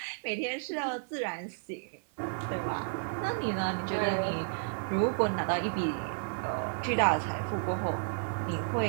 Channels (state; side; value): silent; left; 56 dB below the other